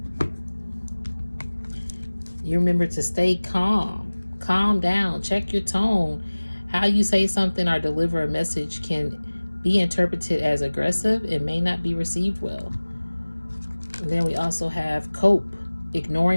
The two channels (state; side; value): inverted; both; correlation -1.00